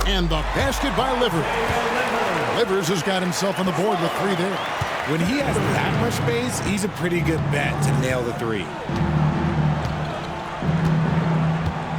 And the basket by Livers. Livers has got himself on the board with 3 there. When he has that much space, he's a pretty good bet to nail the 3.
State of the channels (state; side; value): identical; both; correlation 1.00